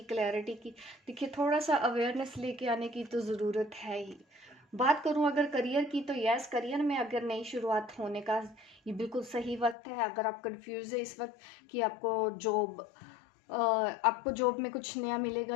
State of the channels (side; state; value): right; drops out; at 9.8 s